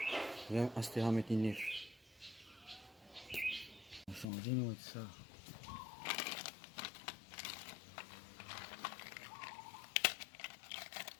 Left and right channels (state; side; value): drops out; right; at 4.2 s